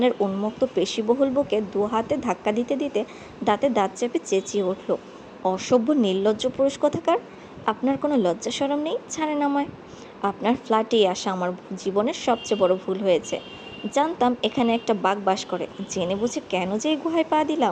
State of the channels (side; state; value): both; identical; correlation 1.00